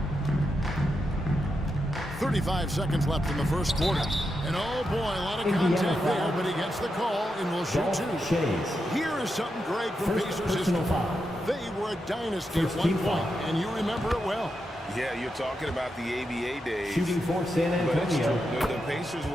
.35 seconds left in the first quarter. And oh boy, a lot of contact there, but he gets the call and will shoot 2. Here is something great from Pacers history. They were a dynasty at one point, and you remember it well. Yeah, you're talking about the ABA days. Shooting for San Antonio. But the Pacers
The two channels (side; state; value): both; normal; correlation 0.86